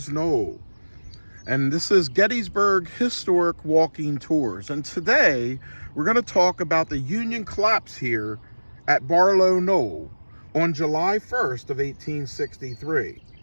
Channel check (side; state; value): both; inverted; correlation -1.00